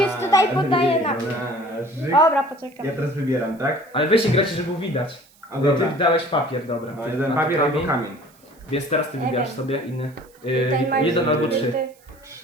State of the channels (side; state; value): right; noise; hiss, 30 dB below the sound